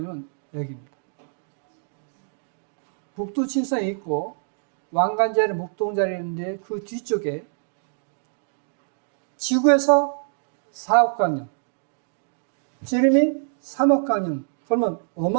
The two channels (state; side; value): silent; left; digital silence